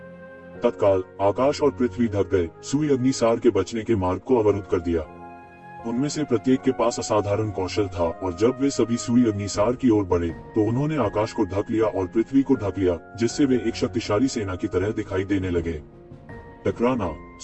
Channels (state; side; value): identical; both; correlation 1.00